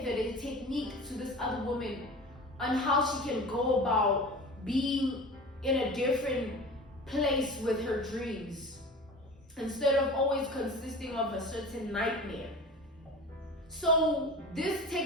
a technique to this other woman on how she can go about being in a different place with her dreams instead of always consisting of a certain nightmare. So this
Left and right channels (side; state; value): both; normal; correlation 0.36